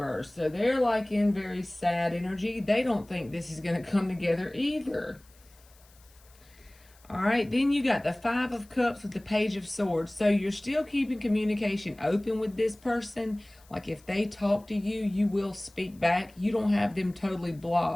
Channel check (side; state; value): left; noise; hiss, 28 dB below the sound